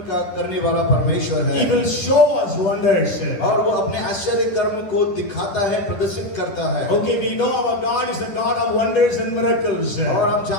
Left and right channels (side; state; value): right; late; 10 ms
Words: का करने वाला परमेश्वर है। He will show us wonders. और वो अपने आश्चर्य कर्म को दिखाता है, प्रदर्शित करता है। Okay, we know our God is a God of wonders and miracles. और हम